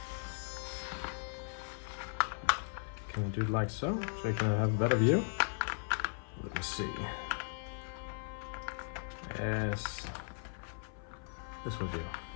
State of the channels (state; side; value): silent; right; 53 dB below the other